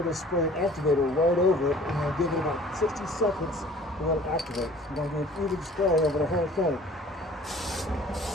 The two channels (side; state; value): both; normal; correlation 0.50